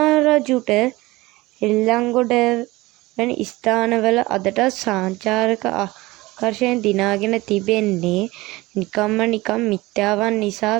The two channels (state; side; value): quieter; left; 20.4 dB